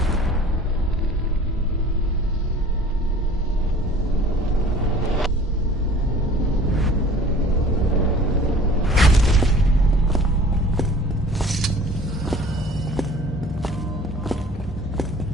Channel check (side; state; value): both; normal; correlation 0.48